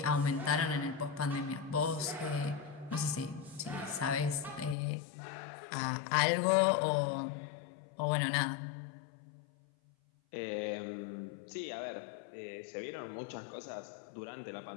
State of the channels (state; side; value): drops out; right; at 4.8 s